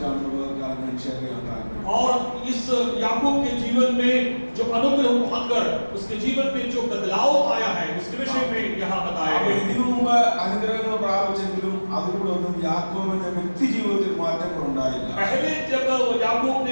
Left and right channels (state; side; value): inverted; both; correlation -1.00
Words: ഞാൻ ഷെയർ ചെയ്യാൻ താല്പര്യം. और इस याकूब के जीवन में जो अनुग्रह पाकर उसके जीवन में जो बदलाव आया है उसके विषय में यहाँ बताया गया है। ഇതിനു മുമ്പ് അനുഗ്രഹങ്ങൾ പ്രാപിച്ചെങ്കിലും അതിലൂടെ ഒന്നും യാക്കോബിന്റെ വ്യക്തി ജീവിതത്തിൽ മാറ്റങ്ങൾ ഉണ്ടായില്ല. पहले जब याकूब